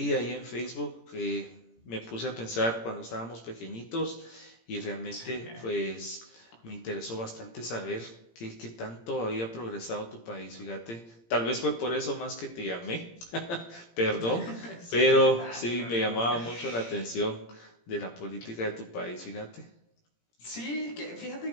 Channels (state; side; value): late; right; 17 ms